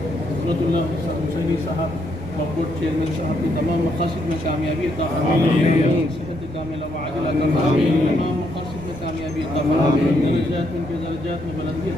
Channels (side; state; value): right; noise; rumble, 17 dB below the sound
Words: हजरतुल्लाह हुसैनी साहब वक्फ बोर्ड चेयरमैन साहब की तमाम मकासद में कामयाबी अता फरमाएं, सेहत कामिला व आजिला अता फरमाएं, तमाम मकासद में कामयाबी अता फरमाएं, दर्जात में दर्जात में बुलंदी